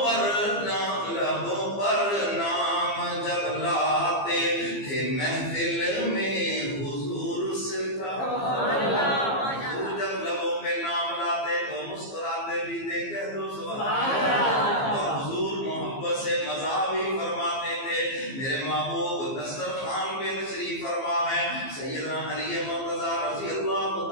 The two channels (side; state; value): right; late; 15 ms